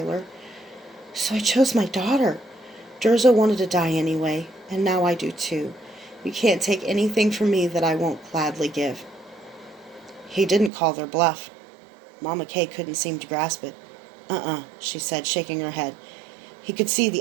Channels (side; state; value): left; drops out; at 10.7 s